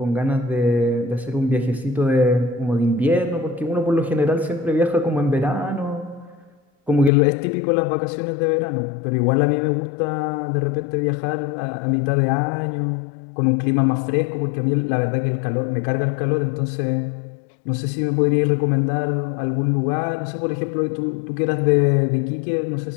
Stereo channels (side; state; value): right; drops out; at 7.1 s